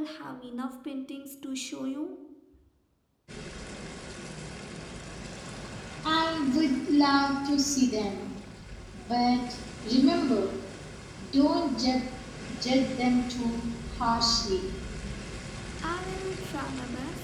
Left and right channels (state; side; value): identical; both; correlation 1.00